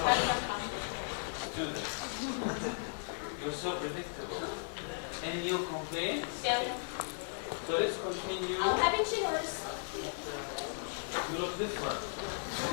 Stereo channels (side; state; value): right; silent; 54 dB below the other